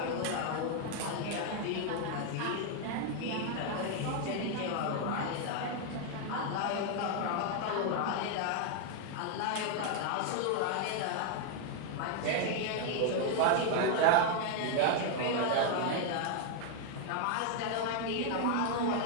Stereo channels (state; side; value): different; both; correlation 0.00